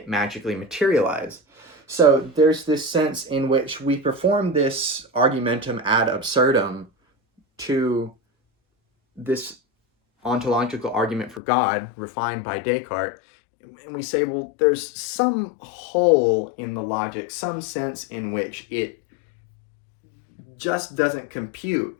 magically materialize. So there's this sense in which we perform this argumentum ad absurdum to this ontological argument for God refined by Descartes, and we say, well, there's some hole in the logic, some sense in which it just doesn't compute.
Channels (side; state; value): right; drops out; at 11.4 s